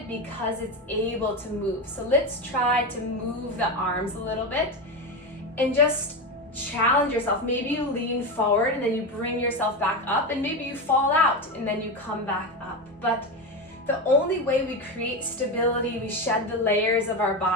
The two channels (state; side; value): normal; both; correlation 0.16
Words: because it's able to move. So let's try to move the arms a little bit and just challenge yourself. Maybe you lean forward and then you bring yourself back up, and maybe you fall out and then you come back up. But the only way we create stability, we shed the layers of our